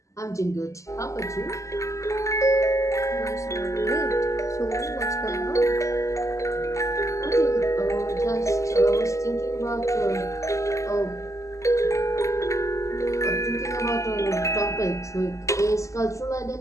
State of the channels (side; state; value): right; late; 0.15 ms